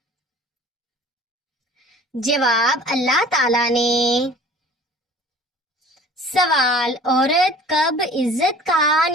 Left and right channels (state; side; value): normal; both; correlation 0.47